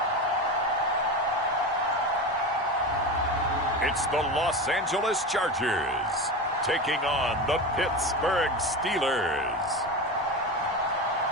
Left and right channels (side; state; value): both; normal; correlation 0.24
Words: It's the Los Angeles Chargers taking on the Pittsburgh Steelers.